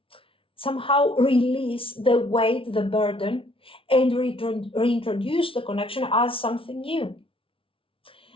somehow release the weight, the burden, and reintroduce the connection as something new.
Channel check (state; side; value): late; right; 0.26 ms